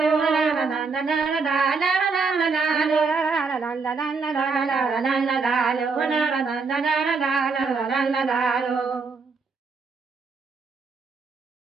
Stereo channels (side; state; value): left; quieter; 4.6 dB